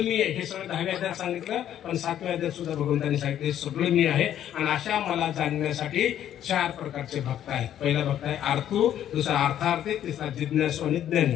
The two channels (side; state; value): right; quieter; 10.9 dB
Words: मी आहे. हे सगळं 10व्या अध्यायात सांगितलं, पण 7व्या अध्यायात सुद्धा भगवंतांनी सांगितलं सगळं मी आहे. आणि अशा मला जाणण्यासाठी 4 प्रकारचे भक्त आहेत. पहिला भक्त आहे आर्थू, दुसरा अर्थार्थी, तिसरा जिज्ञासू आणि